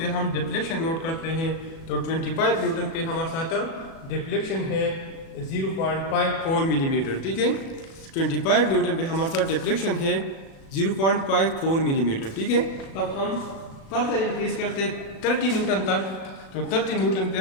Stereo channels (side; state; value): right; late; 37 ms